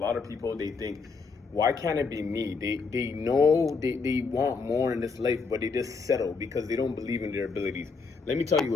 of people, they think, why can't it be me? They know they want more in this life, but they just settle because they don't believe in their abilities. Let me tell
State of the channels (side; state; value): right; quieter; 4.7 dB